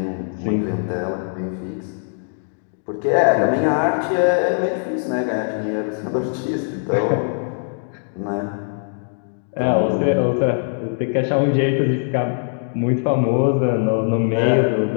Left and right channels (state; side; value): silent; right; digital silence